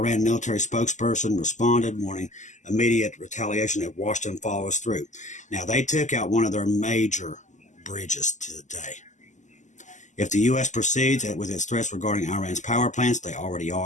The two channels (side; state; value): right; late; 0.35 ms